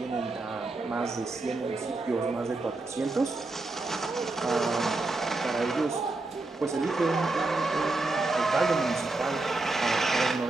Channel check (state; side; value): quieter; left; 3.2 dB